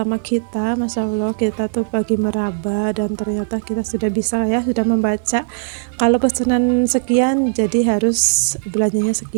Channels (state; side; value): silent; left; digital silence